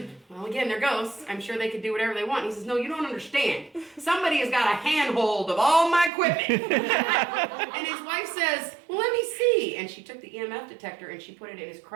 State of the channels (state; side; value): drops out; left; at 6.1 s